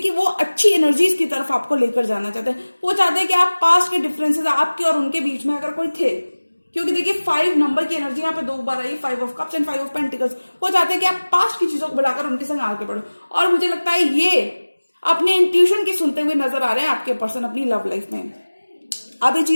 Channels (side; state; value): both; inverted; correlation -1.00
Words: वो अच्छी एनर्जीज की तरफ आपको लेकर जाना चाहते हैं। वो चाहते हैं कि आप पास्ट के डिफरेंसेस आपके और उनके बीच में अगर कोई थे, क्योंकि देखिए 5 नंबर की एनर्जी यहाँ पे 2 बार आई, 5 of cups and 5 of pentacles. वो चाहते हैं कि आप पास्ट की चीजों को बुलाकर उनके संग आगे बढ़ो। और मुझे लगता है ये अपने इंट्यूशन की सुनते हुए नजर आ रहे हैं आपके पर्सन अपनी लव लाइफ में। आप ये